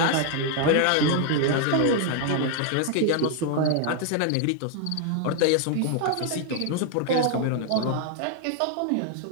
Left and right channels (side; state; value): both; different; correlation 0.00